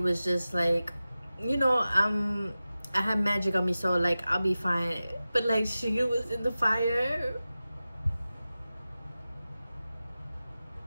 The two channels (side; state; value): both; inverted; correlation -0.95